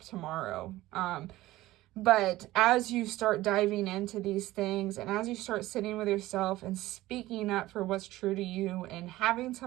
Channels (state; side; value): quieter; left; 16.9 dB